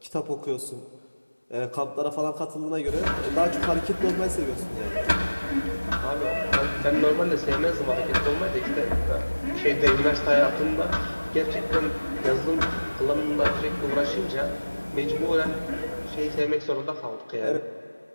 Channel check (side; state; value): both; inverted; correlation -1.00